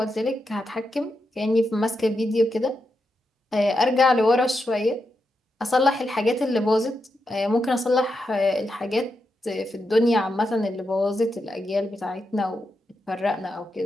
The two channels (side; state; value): both; normal; correlation 0.86